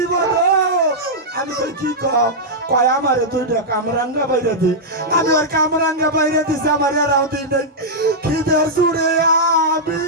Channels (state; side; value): normal; both; correlation -0.08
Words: আমি তো কি কয় আমারে 2টা কামরাঙ্গা বাইরে দি, আমি ওর কামরাঙ্গা বাইরে দিছি, আমার এরাও দিই নাই। খিদে জুড়ে আমি